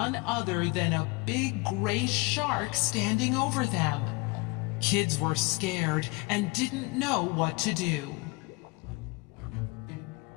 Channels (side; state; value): right; quieter; 25.8 dB